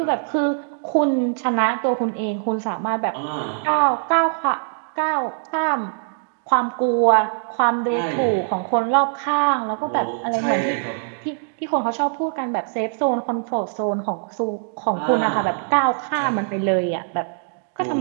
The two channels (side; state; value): left; silent; digital silence